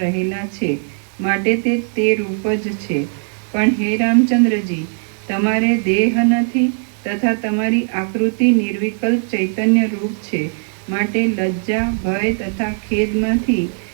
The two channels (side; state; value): left; silent; 56 dB below the other